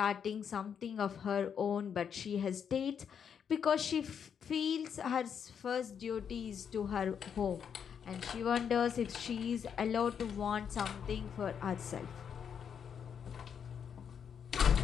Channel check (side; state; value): right; quieter; 7.6 dB